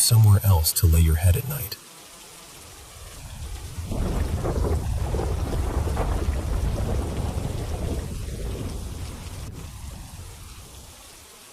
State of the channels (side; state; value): both; identical; correlation 1.00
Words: somewhere else to lay your head at night.